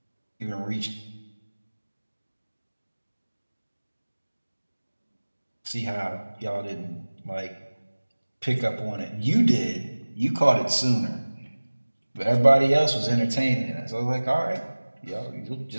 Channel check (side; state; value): both; inverted; correlation -1.00